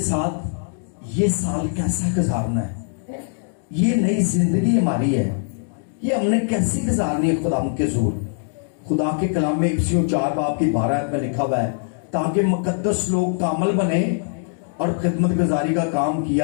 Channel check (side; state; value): right; silent; digital silence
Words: साथ ये साल कैसा गुजारना है, ये नई जिंदगी हमारी है, ये हमने कैसी गुजारनी है खुदा के जोर। खुदा के कलाम में इफ्सियों 4 बाब की 12 में लिखा हुआ है ताकि मुकद्दस लोग कामल बने और खिदमत गुजारी का काम